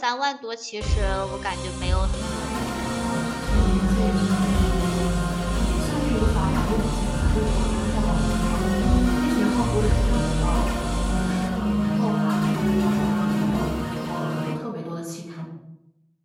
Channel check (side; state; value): both; identical; correlation 1.00